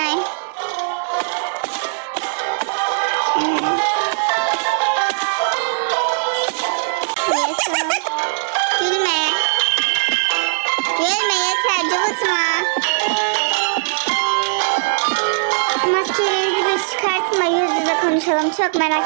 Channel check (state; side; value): silent; left; digital silence